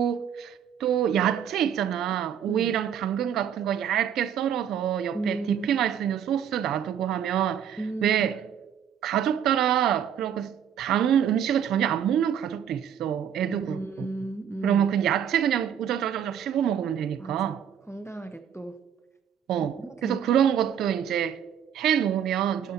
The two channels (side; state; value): left; quieter; 8.9 dB